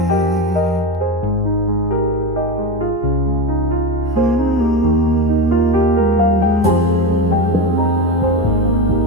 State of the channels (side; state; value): both; normal; correlation 0.20